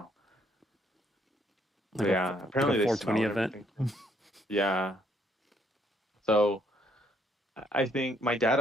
But Like a yeah, like a apparently they 420 smell and event. everything. Yeah. So I think my dad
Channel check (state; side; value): normal; both; correlation 0.69